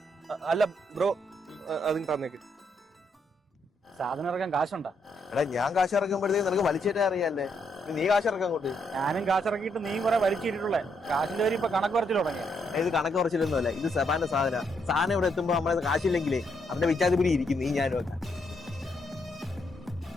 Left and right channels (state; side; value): normal; both; correlation 0.76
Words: അല്ല ബ്രോ, അതിന് തന്നേക്ക്. സാധനം ഇറക്കാൻ കാശുണ്ടാ? എടാ ഞാൻ കാശ് ഇറക്കുമ്പോഴത്തേക്ക് നിനക്ക് വലിച്ചേറ്റാ അറിയാല്ലേ. നീ കാശ് ഇറക്കാൻ കൊണ്ട്. ഞാനും കാശിറക്കിയിട്ട് നീ കുറെ വലിച്ചിട്ടുള്ളേ. കാശിന്റെ പേര് ഇപ്പൊ കണക്ക് കുറച്ചിൽ തുടങ്ങിയ. ഇത് കണക്ക് കുറച്ചില്ലൊന്നുമല്ല, ഇത് സെബാന്റെ സാധനം ഇവിടെ എത്തുമ്പോ നമ്മളത് കാശില്ലെങ്കിലേ അവന്റെ വിച്ചാതിപിടി ഇരിക്കും. നീ ഞാനും ഒക്കെ